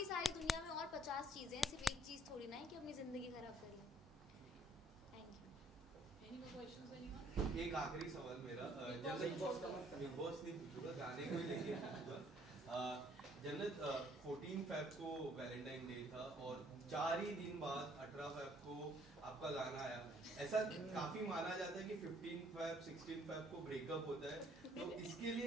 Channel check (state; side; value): normal; both; correlation 0.63